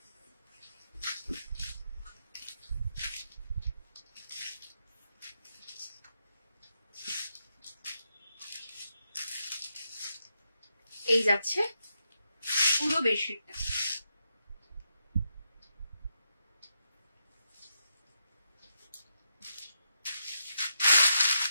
এই যাচ্ছে পুরো বেডশিটটা।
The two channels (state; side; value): inverted; both; correlation -0.83